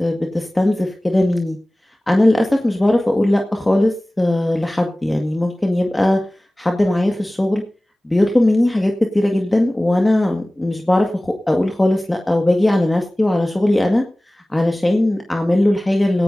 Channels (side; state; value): both; normal; correlation 0.98